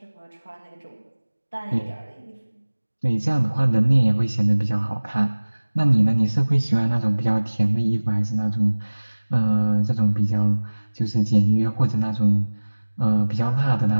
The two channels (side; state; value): both; inverted; correlation -1.00